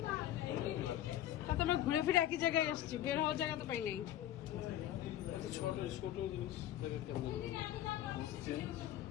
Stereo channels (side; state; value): right; quieter; 12.5 dB